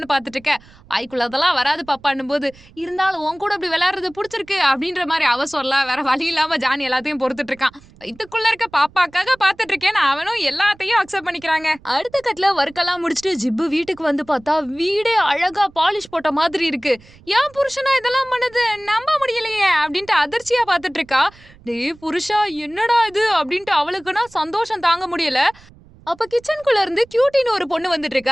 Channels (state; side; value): noise; right; rumble, 25 dB below the sound